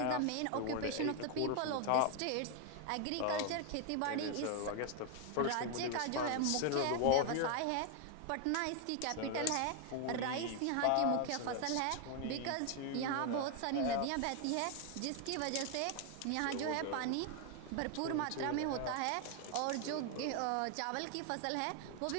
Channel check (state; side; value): different; both; correlation 0.01